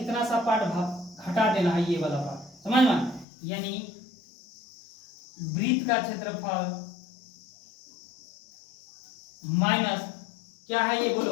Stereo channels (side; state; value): right; drops out; at 3.2 s